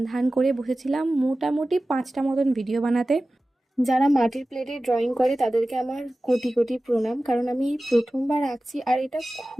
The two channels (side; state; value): both; normal; correlation 0.96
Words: ধান করে বসেছিলাম মোটামুটি 5টা মতন ভিডিও বানাতে। যারা মাটির প্লেটে ড্রয়িং করে তাদেরকে আমার কোটি কোটি প্রণাম, কারণ আমি প্রথমবার আঁকছি আর এটা